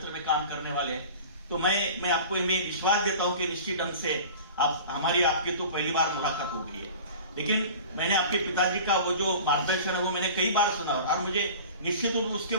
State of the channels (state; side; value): inverted; both; correlation -0.39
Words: में काम करने वाले हैं, तो मैं आपको मैं विश्वास देता हूँ कि निश्चित ढंग से आपकी तो पहली बार मुलाकात हो गई है, लेकिन मैंने आपके पिताजी का वो जो मार्गदर्शन है वो मैंने कई बार सुना, और मुझे निश्चित रूप उसके